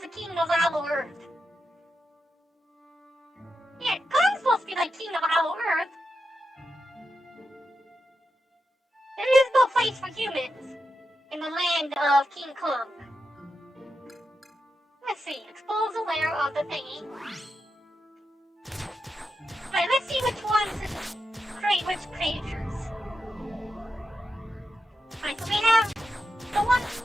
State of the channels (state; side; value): normal; both; correlation 0.88